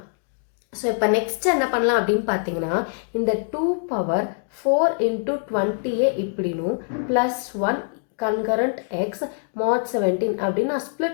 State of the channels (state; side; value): silent; right; digital silence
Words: ஸோ இப்போ நெக்ஸ்ட் என்ன பண்ணலாம் அப்படின்னு பார்த்தீங்கன்னா இந்த 2 பவர் 4 இன்டூ 20ஏ இப்படினும் ப்ளஸ் 1 கன்கரண்ட் எக்ஸ் மாட் 17 அப்படின்னு நான்